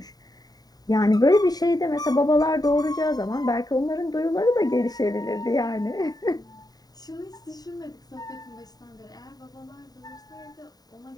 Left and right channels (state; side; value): late; right; 0.18 ms